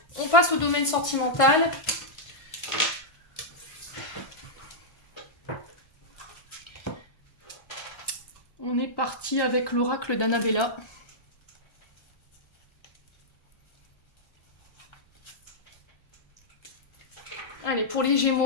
on passe au domaine sentimental. parti avec l'oracle d'Annabella. Allez, pour les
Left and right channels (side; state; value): right; late; 1.5 ms